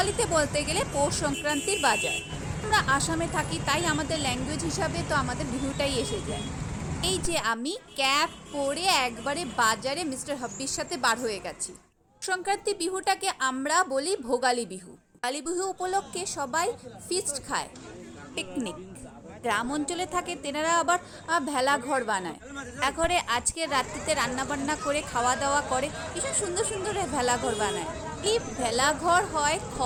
বলতে গেলে পৌষ সংক্রান্তির বাজার। আমরা আসামে থাকি, তাই আমাদের ল্যাঙ্গুয়েজ হিসাবে তো আমাদের বিহুটাই এসে যায়। এই যে আমি ক্যাপ পরে একবারে বাজারে মিস্টার হাব্বির সাথে বার হয়ে গেছি। সংক্রান্তি বিহুটাকে আমরা বলি ভোগালী বিহু। ভোগালী বিহু উপলক্ষে সবাই ফিস্ট খায়, পিকনিক। গ্রাম অঞ্চলে থাকে তেনারা আবার ভেলা ঘর বানায়। ঘরে আজকে রাত্রিতে রান্না বান্না করে খাওয়া দাওয়া করে, ভীষণ সুন্দর সুন্দর ভেলা ঘর বানায়। এই ভেলা ঘর হয়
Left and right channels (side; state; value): both; identical; correlation 1.00